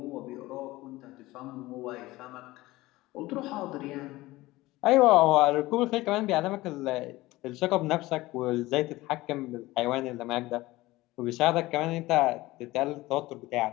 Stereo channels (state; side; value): quieter; right; 18.8 dB